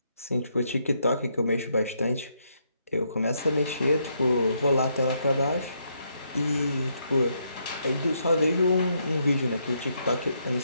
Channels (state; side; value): inverted; both; correlation -0.76